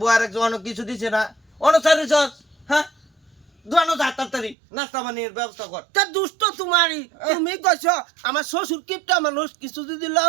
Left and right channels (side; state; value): left; drops out; at 4.5 s